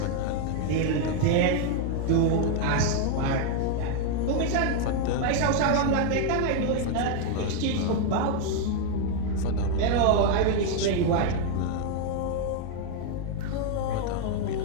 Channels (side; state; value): both; different; correlation 0.00